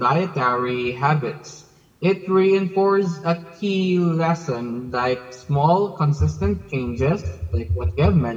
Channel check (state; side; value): identical; both; correlation 1.00